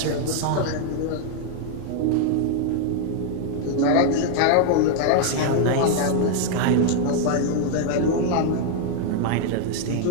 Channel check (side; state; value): both; different; correlation 0.00